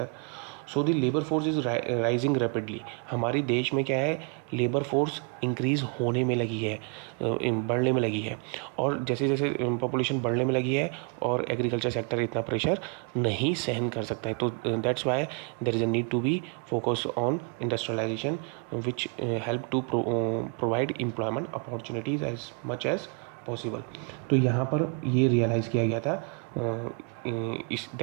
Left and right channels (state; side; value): quieter; left; 38.5 dB